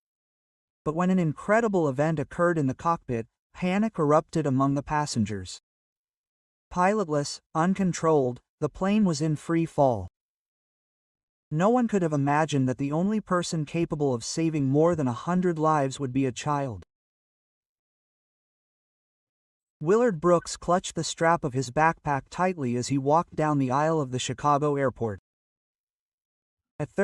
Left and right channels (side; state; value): both; identical; correlation 1.00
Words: But when an incredible event occurred in the cockpit, panic erupted among the passengers. Pilotless, uncontrolled, the plane was in free fall. No one could have imagined that the only person capable of saving more than 100 lives would be a child. Willard Brooks clutched the strap of his backpack tightly as he walked down the aisle of the Chicago airport. At